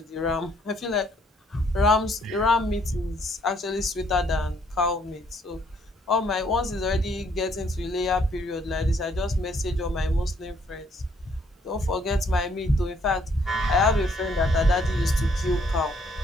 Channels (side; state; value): both; normal; correlation 0.67